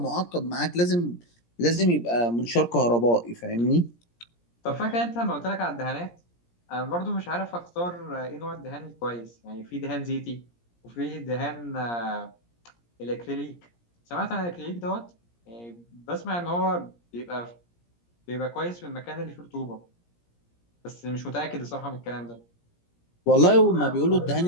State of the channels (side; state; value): right; late; 17 ms